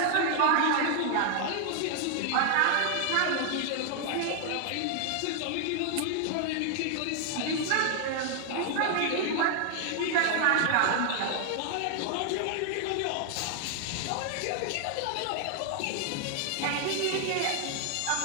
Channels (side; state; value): both; different; correlation 0.00